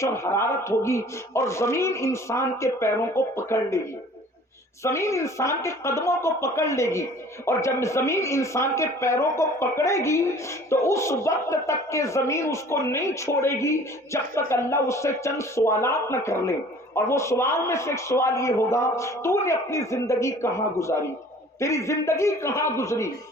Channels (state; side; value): normal; both; correlation 0.49